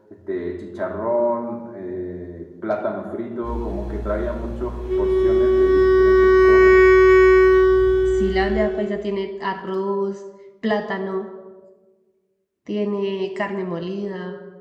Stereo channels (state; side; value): identical; both; correlation 1.00